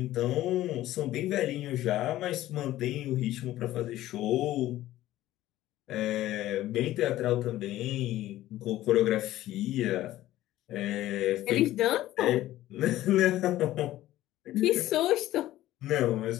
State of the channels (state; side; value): quieter; right; 14.8 dB